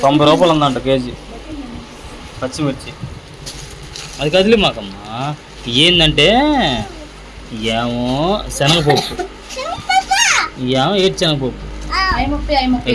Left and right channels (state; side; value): identical; both; correlation 1.00